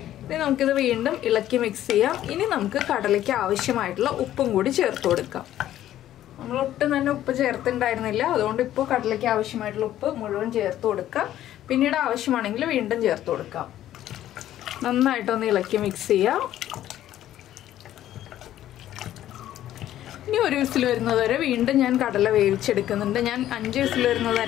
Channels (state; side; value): quieter; right; 12.6 dB